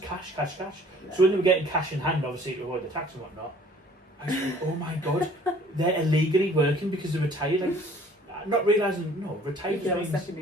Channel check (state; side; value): normal; both; correlation 0.54